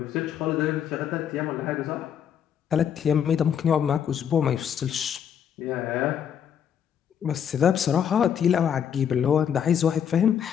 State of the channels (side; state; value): right; quieter; 8.6 dB